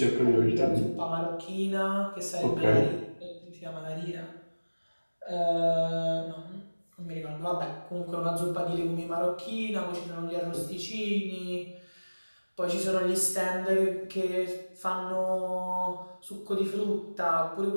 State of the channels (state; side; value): inverted; both; correlation -1.00